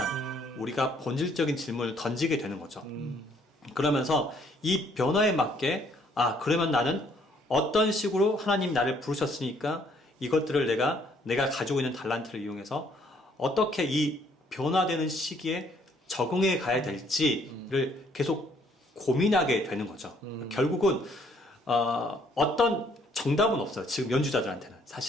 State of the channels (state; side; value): normal; both; correlation 0.65